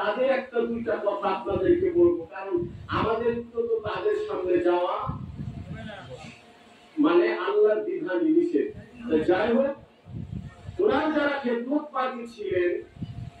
একটা দুইটা কথা আপনাদেরকে বলবো। কারণ আমাদের তো তাদের সামনে যাওয়া মানে আল্লাহর বিধান নিষেধ। যাই হোক, ওনার যারা খেদমত পাখি ছিলেন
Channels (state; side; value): identical; both; correlation 1.00